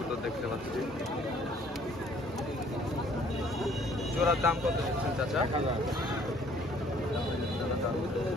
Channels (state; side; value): normal; both; correlation 0.59